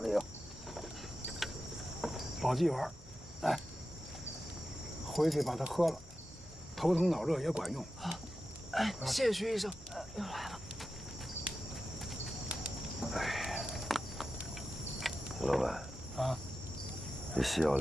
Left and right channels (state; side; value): normal; both; correlation 0.92